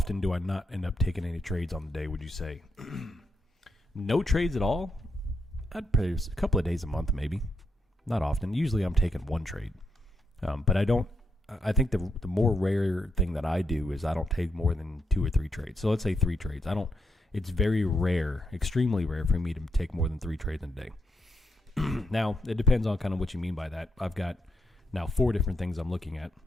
do I not end up taking any trades on the day, would you say? No trades at all? I'd pay a couple of days a month, maybe. Not often. Usually I'm taking one trade. But I think the more rare thing that I do is I don't take more than 2 or 3 trades. So let's say 3 trades. It's very rare, extremely rare for me to take more than 3 trades in a day. Now, it depends on kind of what you mean by that. I've got now 4 different things I'm looking at,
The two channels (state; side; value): normal; both; correlation 0.81